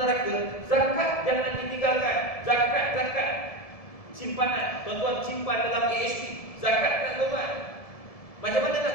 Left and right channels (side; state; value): right; late; 1.7 ms